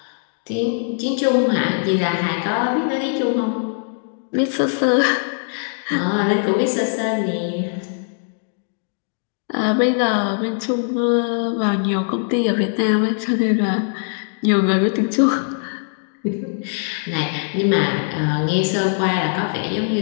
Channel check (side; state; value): right; silent; digital silence